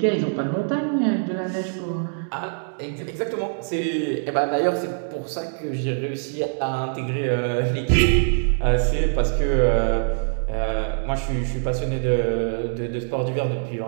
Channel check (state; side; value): silent; left; digital silence